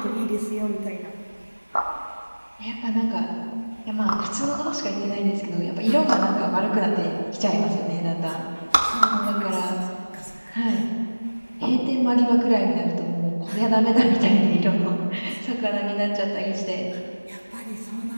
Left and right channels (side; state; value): both; inverted; correlation -1.00